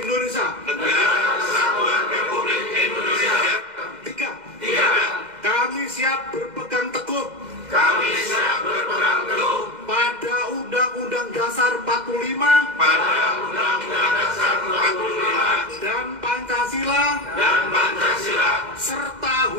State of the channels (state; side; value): late; left; 2.0 ms